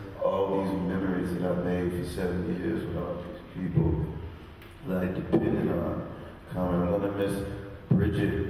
all these memories that I've made for 7 years with all these people that I depended on coming. I'm going to miss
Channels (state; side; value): identical; both; correlation 1.00